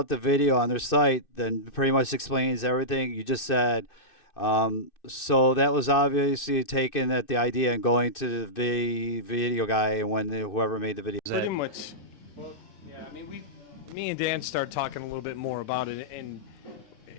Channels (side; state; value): right; late; 2.6 ms